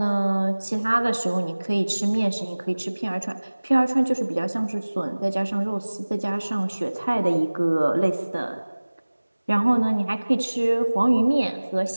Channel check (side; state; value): both; inverted; correlation -1.00